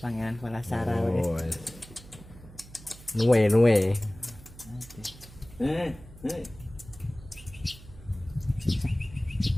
pangeran Palasara wek. Oh. Nuwe. Eh.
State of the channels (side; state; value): right; noise; hum, 19 dB below the sound